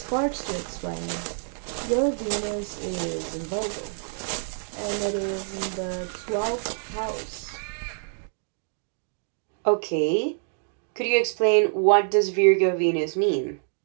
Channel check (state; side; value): silent; left; digital silence